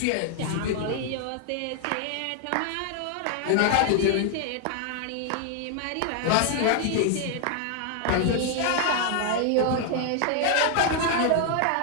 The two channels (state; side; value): different; both; correlation 0.00